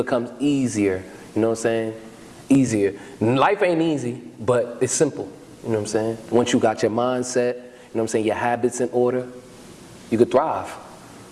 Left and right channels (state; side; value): identical; both; correlation 1.00